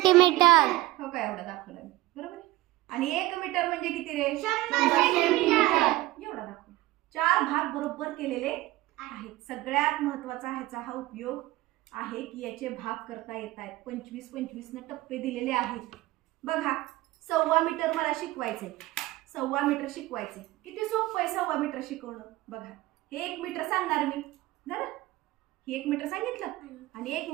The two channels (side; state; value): left; quieter; 18.0 dB